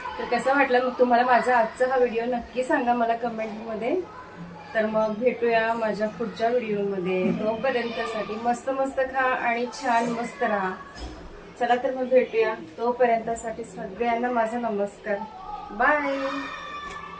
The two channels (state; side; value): identical; both; correlation 1.00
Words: तर कसा वाटला मग तुम्हाला माझा आजचा हा व्हिडिओ नक्की सांगा मला कमेंटमध्ये. तर मग भेटूया माझ्या पुढच्या व्हिडिओमध्ये. तोपर्यंतसाठी मस्त मस्त खा आणि छान मस्त राहा. चला तर मग भेटूया. तोपर्यंतसाठी सगळ्यांना माझा नमस्कार. बाय.